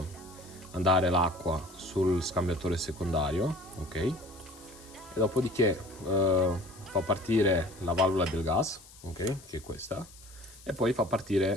andare l'acqua sul scambiatore secondario, ok? E dopodiché fa partire la valvola del gas, ok? Che è questa, e poi fa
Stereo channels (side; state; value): left; noise; hiss, 21 dB below the sound